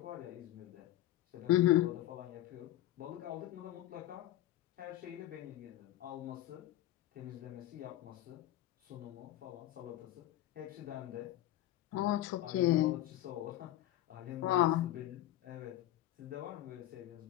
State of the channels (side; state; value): right; quieter; 14.2 dB